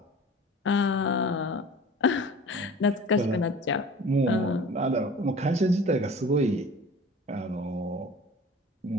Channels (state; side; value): normal; both; correlation 0.42